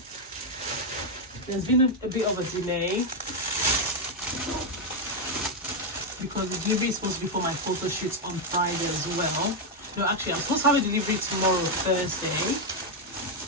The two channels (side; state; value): both; normal; correlation 0.02